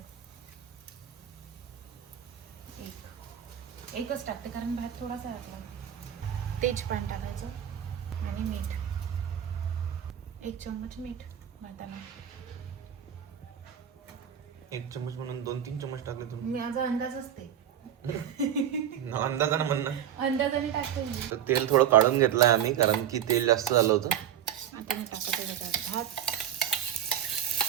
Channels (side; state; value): left; quieter; 9.8 dB